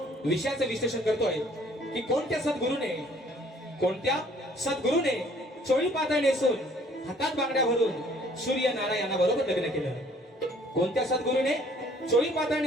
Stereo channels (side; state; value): both; normal; correlation 0.58